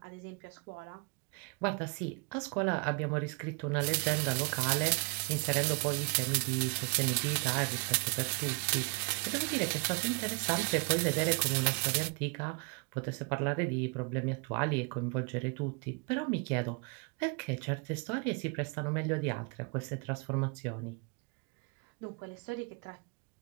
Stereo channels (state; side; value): quieter; left; 34.0 dB